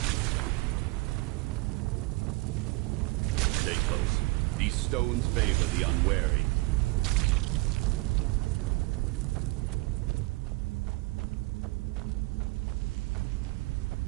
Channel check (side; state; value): left; quieter; 22.8 dB